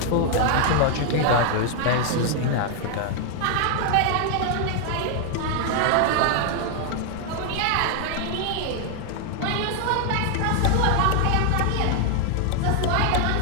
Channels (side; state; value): both; different; correlation 0.00